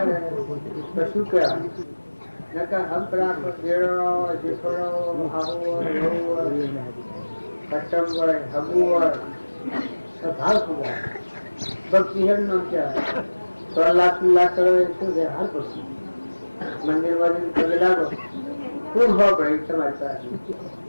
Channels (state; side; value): inverted; both; correlation -1.00